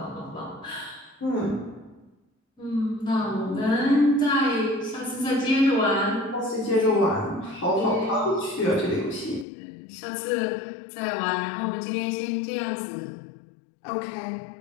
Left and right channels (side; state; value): right; drops out; at 9.5 s